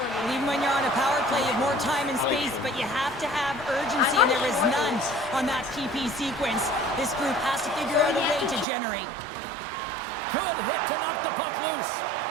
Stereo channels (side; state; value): left; drops out; at 8.7 s